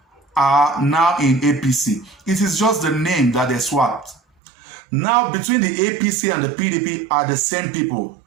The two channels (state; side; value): drops out; left; at 4.2 s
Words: are now in APC. It is just the name that they swapped. Now, between the APC and the PDP are the same people,